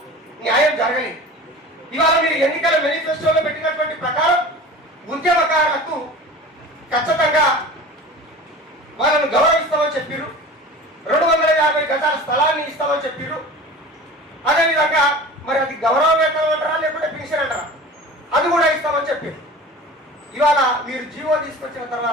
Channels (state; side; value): normal; both; correlation 0.38